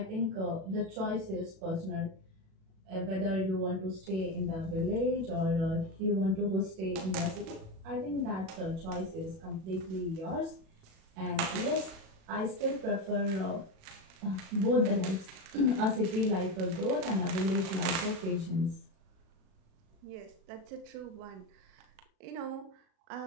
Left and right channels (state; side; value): late; left; 37 ms